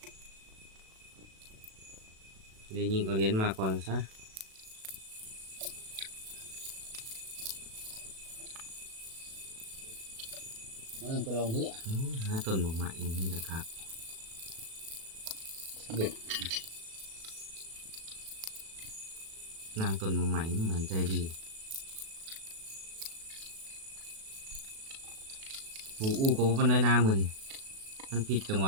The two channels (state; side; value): late; left; 37 ms